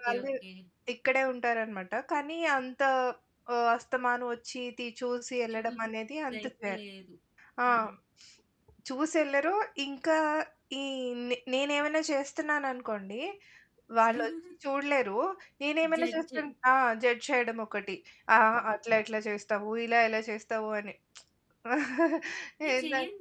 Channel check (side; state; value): both; identical; correlation 1.00